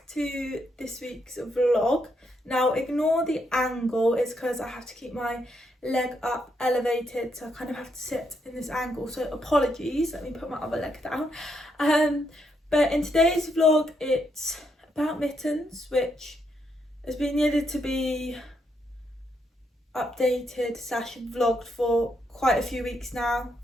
to this week's vlog. Now ignore the angle, it's because I have to keep my leg up elevated, so I kind of have to sit in this angle, so apologies. Let me put my other leg down. But in today's vlog it's about Mittens, which has been needed to be updated / vlogged for quite a few weeks now,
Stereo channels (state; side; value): normal; both; correlation 0.78